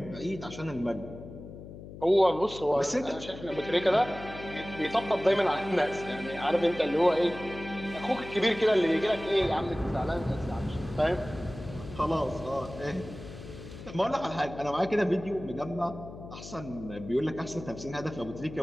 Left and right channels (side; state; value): left; noise; hum, 13 dB below the sound